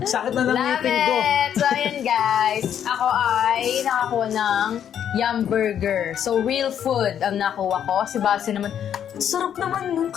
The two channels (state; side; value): quieter; right; 9.3 dB